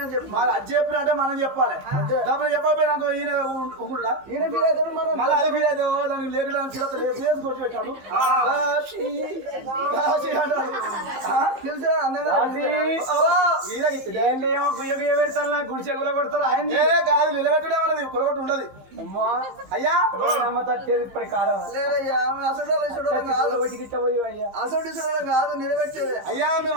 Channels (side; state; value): left; late; 15 ms